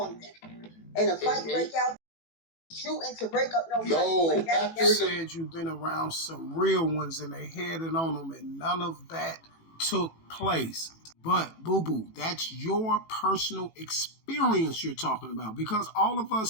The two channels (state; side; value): late; right; 18 ms